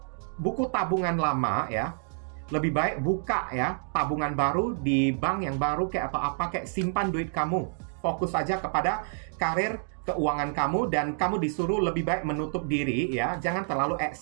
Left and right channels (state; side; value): silent; left; digital silence